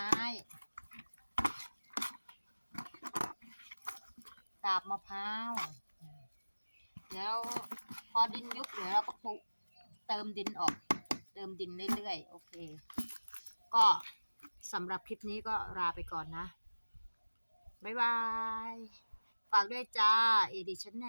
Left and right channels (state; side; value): inverted; both; correlation -1.00